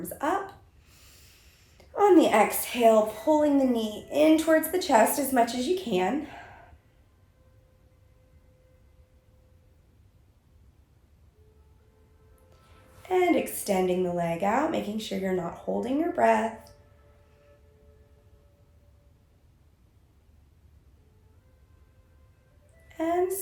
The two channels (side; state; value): both; identical; correlation 1.00